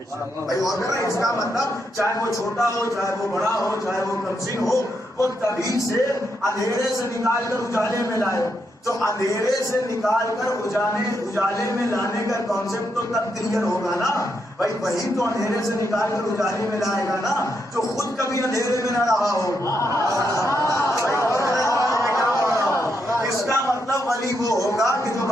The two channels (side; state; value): both; normal; correlation 0.80